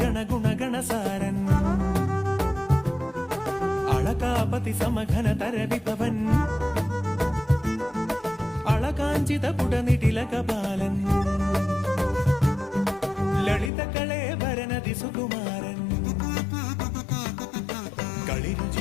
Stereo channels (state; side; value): drops out; right; at 13.7 s